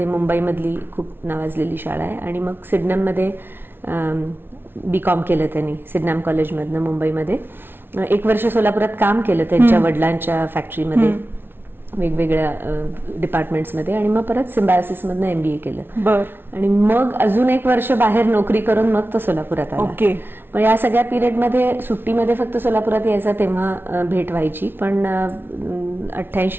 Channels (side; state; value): left; late; 0.11 ms